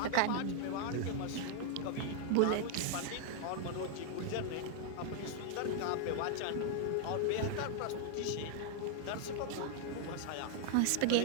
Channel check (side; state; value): both; different; correlation 0.00